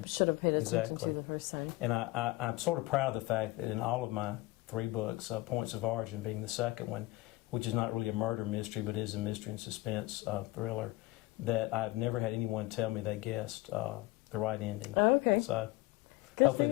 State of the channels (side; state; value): right; quieter; 19.9 dB